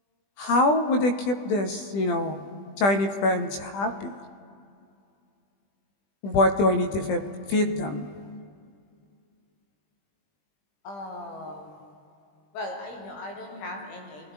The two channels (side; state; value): right; late; 20 ms